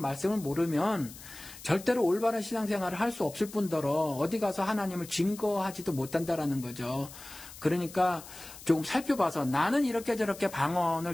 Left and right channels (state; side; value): noise; left; hiss, 16 dB below the sound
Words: 모르면 절대로 올바른 신앙생활을 할 수 없을 뿐더러 어디 가서 하나님을 증거하지도 못한다라는 거죠. 그러니까 조금 살펴봐서 나는 이렇게 저렇게 방언을